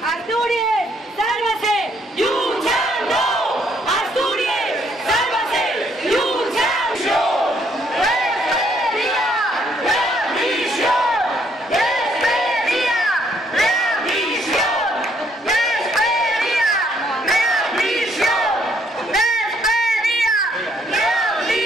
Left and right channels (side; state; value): both; normal; correlation 0.68